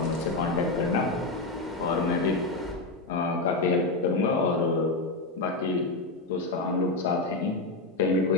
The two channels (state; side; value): quieter; right; 3.2 dB